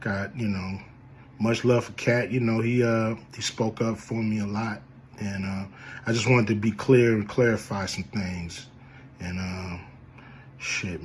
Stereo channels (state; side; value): identical; both; correlation 1.00